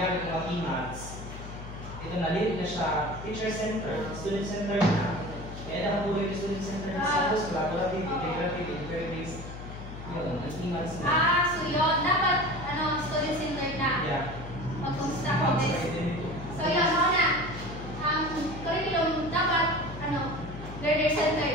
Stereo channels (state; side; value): noise; left; hum, 11 dB below the sound